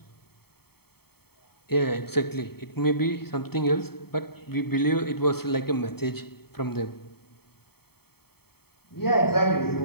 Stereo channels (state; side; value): late; right; 0.96 ms